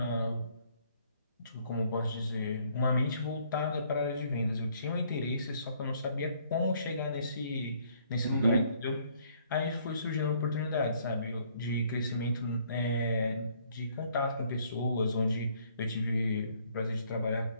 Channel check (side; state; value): both; inverted; correlation -0.64